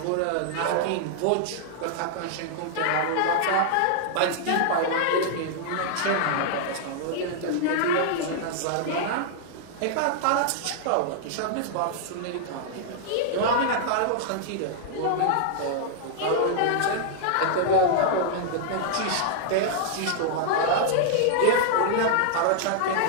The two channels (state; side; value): different; both; correlation -0.01